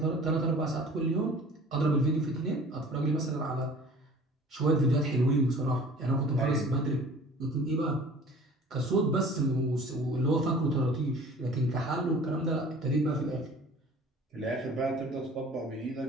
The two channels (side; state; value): both; normal; correlation 0.46